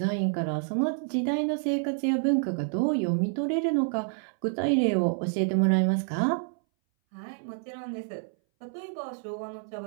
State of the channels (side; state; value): left; silent; 59 dB below the other